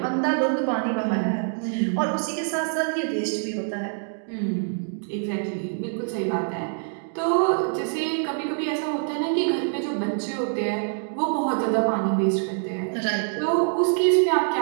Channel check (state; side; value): silent; left; digital silence